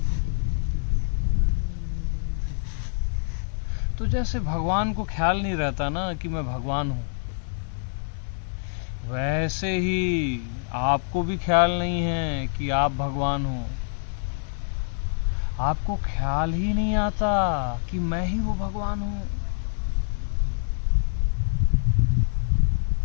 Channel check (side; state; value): right; silent; digital silence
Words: तो जैसे भगवान को ख्याल नहीं रहता ना कि मैं भगवान हूं, वैसे ही आपको भी ख्याल नहीं है कि आप भगवान हो। आपको ख्याल ही नहीं आता कि मैं ही वो भगवान हूं